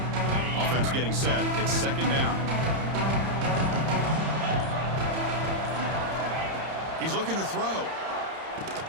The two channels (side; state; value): left; late; 31 ms